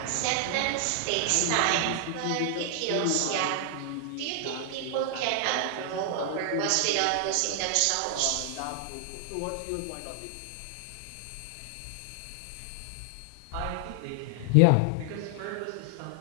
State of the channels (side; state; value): both; different; correlation 0.00